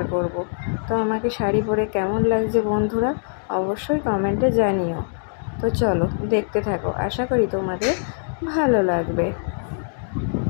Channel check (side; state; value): right; silent; digital silence